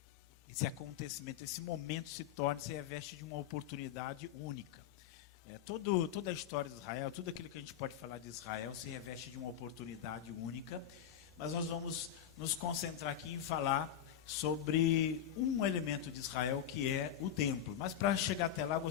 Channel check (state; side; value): quieter; right; 9.8 dB